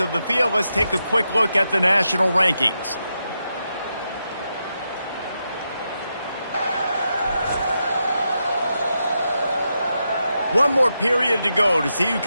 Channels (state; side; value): inverted; both; correlation -0.86